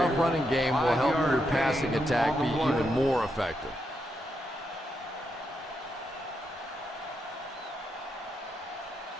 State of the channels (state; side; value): normal; both; correlation 0.82